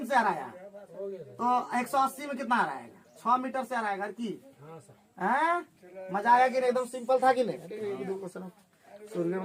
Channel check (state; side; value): identical; both; correlation 1.00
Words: से हराया तो 180 में कितना हराएगा? 6 मीटर से हराएगा की। मजा आया कि नहीं? एकदम सिंपल था कि नहीं? सूर्य